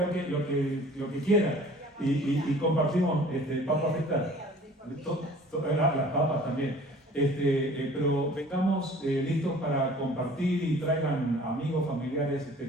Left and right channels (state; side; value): normal; both; correlation 0.49